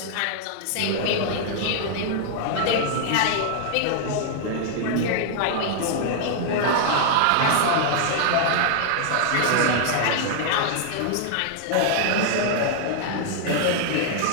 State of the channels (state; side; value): different; both; correlation -0.01